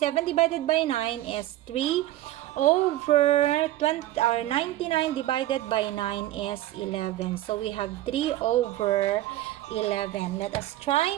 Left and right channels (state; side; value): quieter; left; 15.0 dB